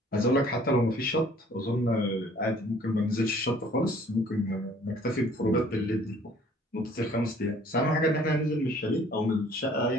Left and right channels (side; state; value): both; normal; correlation 0.56